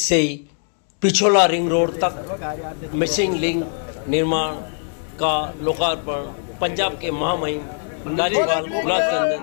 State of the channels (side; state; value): right; silent; digital silence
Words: Pichola ring road तक मिसिंग लिंक निर्माण का लोकार्पण पंजाब के महामहिम राज्यपाल गुलाब चंद